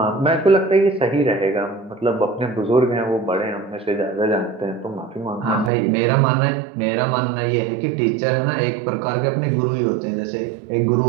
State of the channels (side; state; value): left; drops out; at 5.7 s